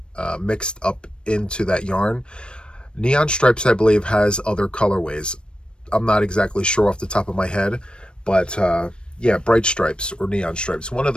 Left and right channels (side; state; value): right; late; 0.054 ms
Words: mixed up into that yarn. Neon stripes, I believe, has other colorways. I'm not exactly sure off the top of my head, but yeah, bright stripes or neon stripes, one of